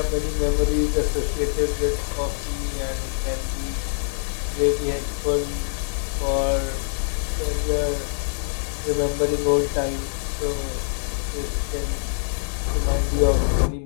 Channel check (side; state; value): right; silent; digital silence